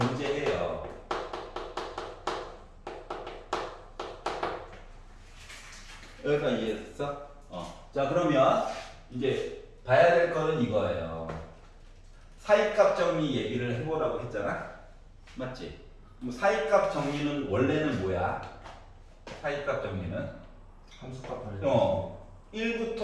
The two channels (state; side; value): identical; both; correlation 1.00